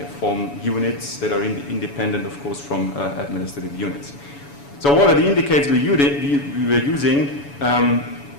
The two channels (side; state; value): right; late; 7.0 ms